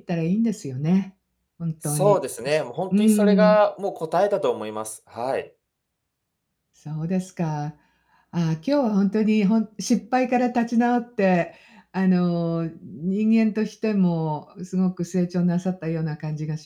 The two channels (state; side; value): identical; both; correlation 1.00